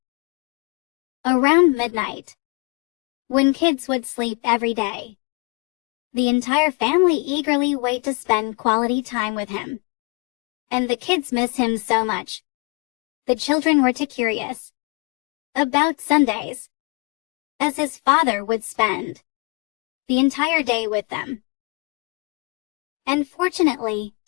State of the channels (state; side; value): quieter; right; 32.1 dB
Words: around midnight, when kids would sleep every day. The entire family eagerly wait to spend quality time with him, and the kids miss him so much. The children were too curious about Sundays, as his father would spend the entire day with them. And fortunately,